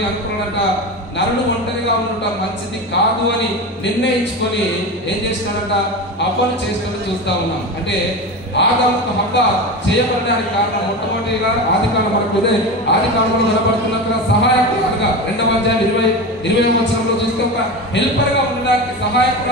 అనుకున్నాడంట. నరుడు ఒంటరిగా ఉండటం మంచిది కాదు అని నిర్ణయించుకొని ఏం చేసినాడంట? హవ్వను చేసినట్టు చూస్తా ఉన్నాం. అంటే ఆదాముకు హవ్వ చేయబడడానికి కారణం మొట్టమొదటిగా ఆదికాండం మనకు ఆదికాండంలో కనబడుతున్నట్టుగా సహాయకురాలుగా 2వ అధ్యాయం 20వ వచనంలో చూస్తే ఒక హెల్పర్ గా ఉండడానికి,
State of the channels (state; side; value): normal; both; correlation 0.24